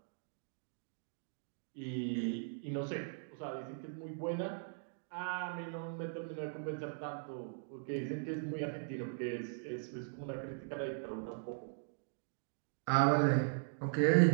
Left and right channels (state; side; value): silent; left; digital silence